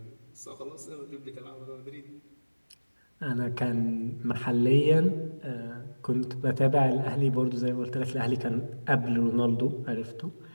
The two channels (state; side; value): inverted; both; correlation -1.00